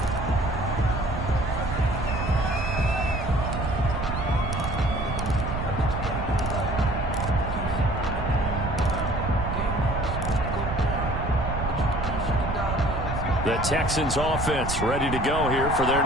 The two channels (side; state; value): right; noise; rumble, 5 dB below the sound